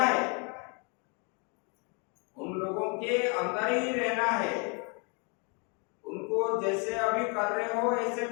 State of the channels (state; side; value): quieter; right; 34.3 dB